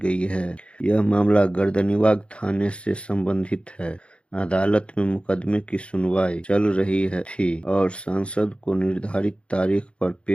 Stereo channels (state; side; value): late; right; 0.059 ms